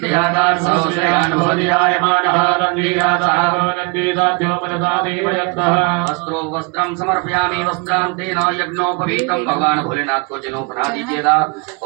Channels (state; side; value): quieter; left; 30.9 dB